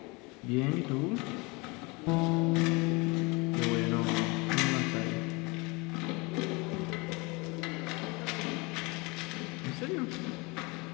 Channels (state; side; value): quieter; right; 27.0 dB